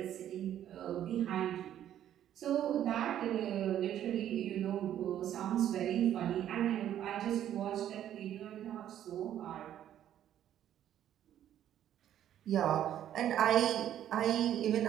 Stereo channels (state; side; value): quieter; left; 11.1 dB